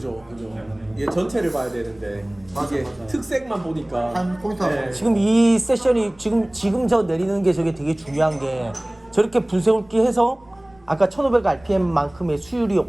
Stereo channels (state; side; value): noise; right; rumble, 29 dB below the sound